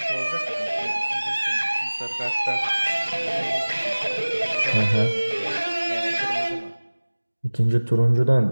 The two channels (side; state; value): both; inverted; correlation -1.00